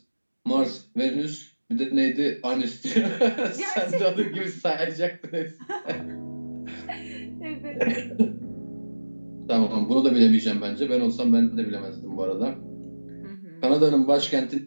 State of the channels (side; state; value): both; inverted; correlation -1.00